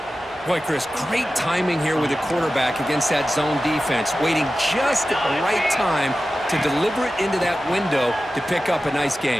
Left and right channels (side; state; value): both; normal; correlation 0.94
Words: Boy, Chris, great timing here with the quarterback against that zone defense, waiting just at the right time to deliver it into that window to pick up a nice